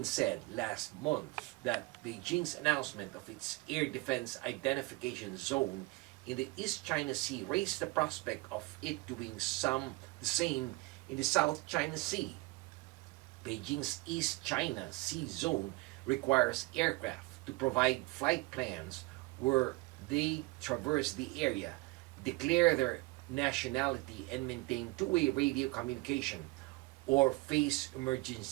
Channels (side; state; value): left; quieter; 23.4 dB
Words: said last month that Beijing's announcement of its air defense identification zone in the East China Sea raised the prospect of it doing the same in the South China Sea. Beijing's East China Sea zone requires aircraft to provide flight plans where they traverse the area, declare their nationality, and maintain 2-way radio communication or face